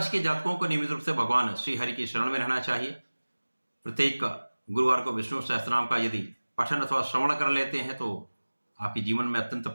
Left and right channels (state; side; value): inverted; both; correlation -1.00